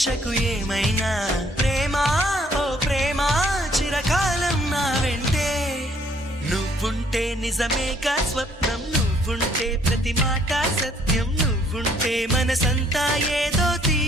ఏమైనా ప్రేమ ఓ ప్రేమ చిరకాలం నా వెంటే నువ్వుంటే నిజమేగా స్వప్నం నువ్వుంటే ప్రతి మాట సత్యం నువ్వుంటే మనసంతా ఏదో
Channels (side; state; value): both; normal; correlation 0.64